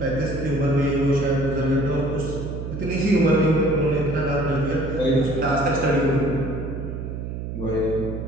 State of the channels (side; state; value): right; noise; hum, 6 dB below the sound